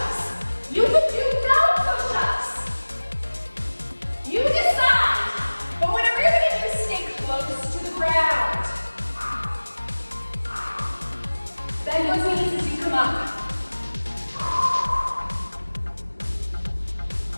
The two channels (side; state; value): both; inverted; correlation -1.00